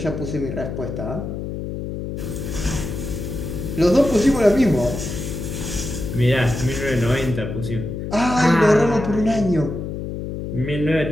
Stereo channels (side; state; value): left; noise; hum, 6 dB below the sound